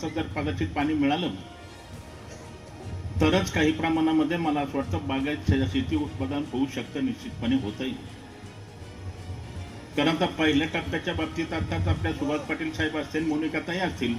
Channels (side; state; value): both; identical; correlation 1.00